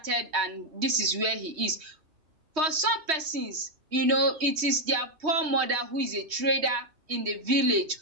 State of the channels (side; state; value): left; late; 3.2 ms